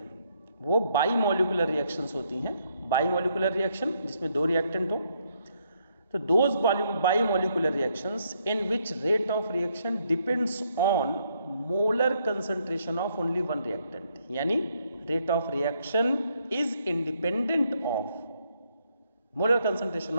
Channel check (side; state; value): both; inverted; correlation -0.73